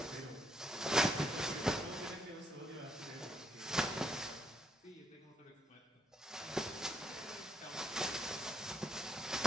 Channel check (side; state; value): both; normal; correlation 0.74